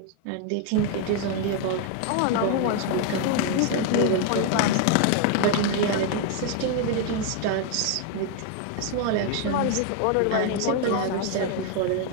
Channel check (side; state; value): both; different; correlation 0.00